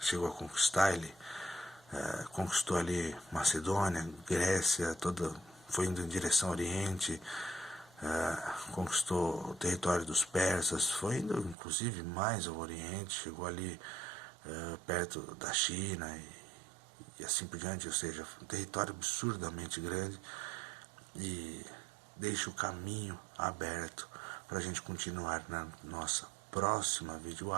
a conquistar. Ele conquistou ali Macedônia, Grécia, foi indo em direção ao Oriente, conquistou o território dos persas, foi indo inclusive mais ao Oriente, chegou ali perto da China e assim por diante, ou seja, um território absurdamente grande, e deixa o caminho aberto para a gente continuar na nossa próxima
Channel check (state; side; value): drops out; left; at 11.6 s